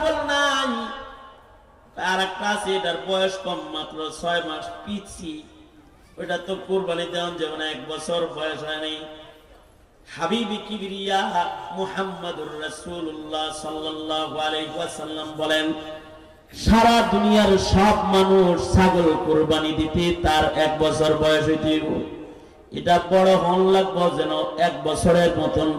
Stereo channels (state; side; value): identical; both; correlation 1.00